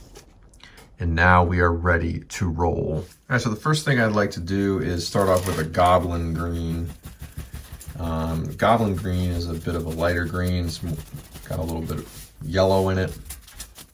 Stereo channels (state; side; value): identical; both; correlation 1.00